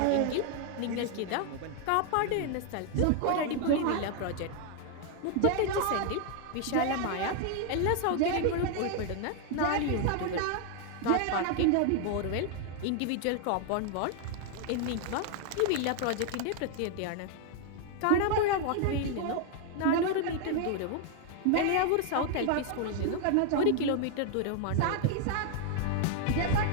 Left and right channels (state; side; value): different; both; correlation 0.00